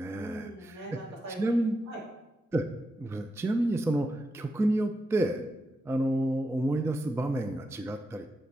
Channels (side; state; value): both; normal; correlation 0.88